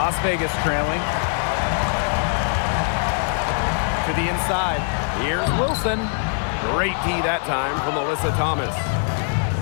Vegas trailing. To the inside. Here's Wilson. Great D that time from Alyssa Thomas.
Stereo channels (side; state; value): right; silent; 64 dB below the other